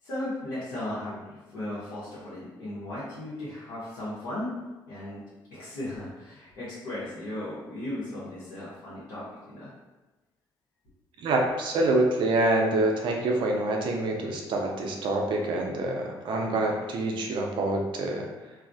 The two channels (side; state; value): both; normal; correlation 0.51